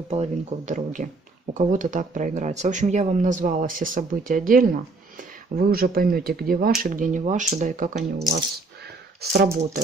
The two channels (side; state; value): left; quieter; 3.5 dB